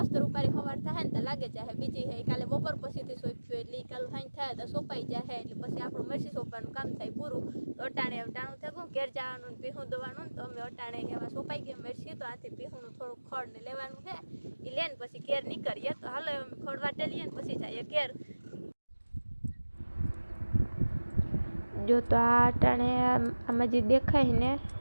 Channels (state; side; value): inverted; both; correlation -1.00